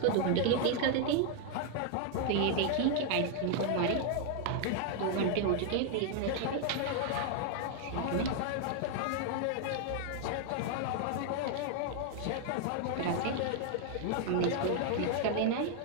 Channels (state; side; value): different; both; correlation 0.00